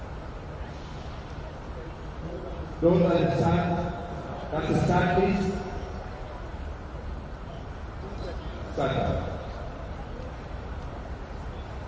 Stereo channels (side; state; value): both; identical; correlation 1.00